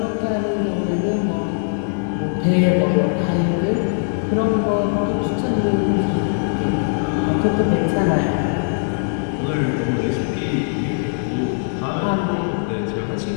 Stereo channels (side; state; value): right; silent; 65 dB below the other